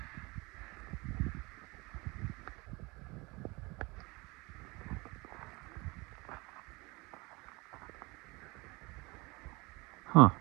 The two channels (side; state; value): left; quieter; 25.0 dB